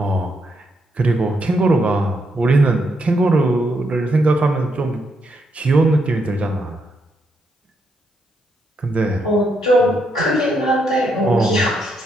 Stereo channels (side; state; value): both; normal; correlation 0.78